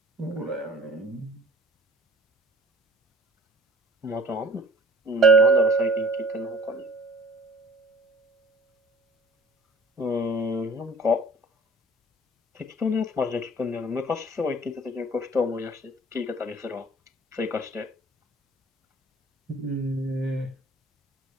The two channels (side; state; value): both; normal; correlation 0.48